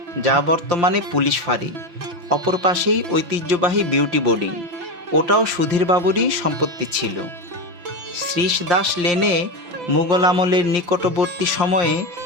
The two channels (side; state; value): left; late; 5.7 ms